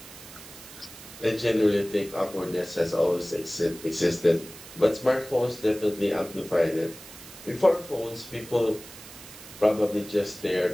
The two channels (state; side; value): noise; right; hiss, 17 dB below the sound